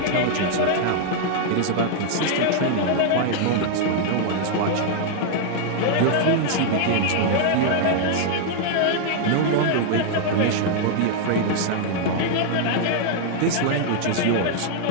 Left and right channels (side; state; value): both; different; correlation 0.00